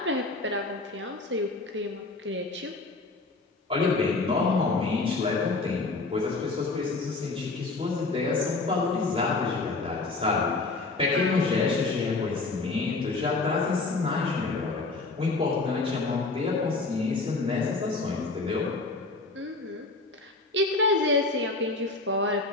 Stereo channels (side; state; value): right; quieter; 3.5 dB